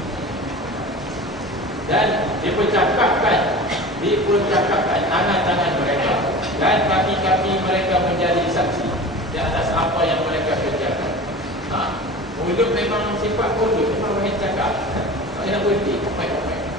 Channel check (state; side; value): normal; both; correlation 0.35